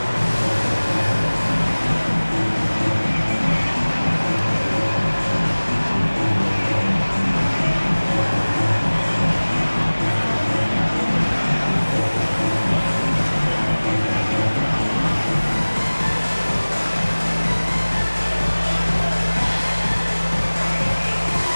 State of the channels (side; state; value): both; inverted; correlation -1.00